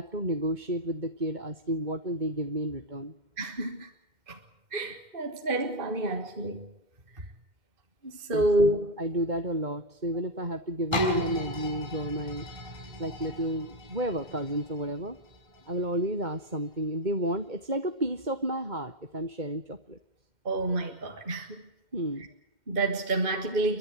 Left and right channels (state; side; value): late; left; 2.1 ms